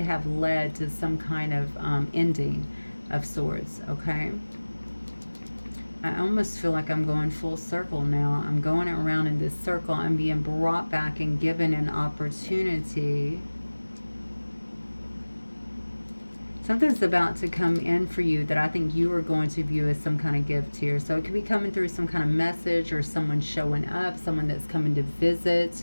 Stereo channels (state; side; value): inverted; both; correlation -1.00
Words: have led to some kind of ending of sorts, okay? I almost feel like I'm going full circle now. I'm going around in this circle. I'm being brought back and given an opportunity. Something's about to come in for you that I think you are going to view as some kind of gift here. So it could be coming through some kind of message or someone showing up, someone that's coming to